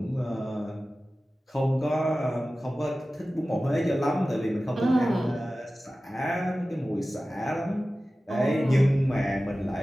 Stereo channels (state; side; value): normal; both; correlation 0.96